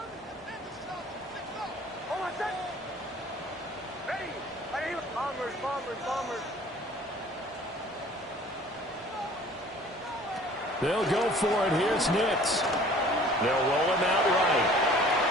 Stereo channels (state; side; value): normal; both; correlation 0.50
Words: They'll go for it. Here's Nix. They'll roll him out right.